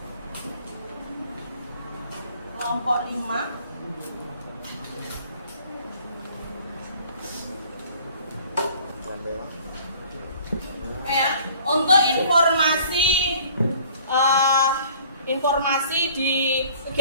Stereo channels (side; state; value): both; inverted; correlation -0.53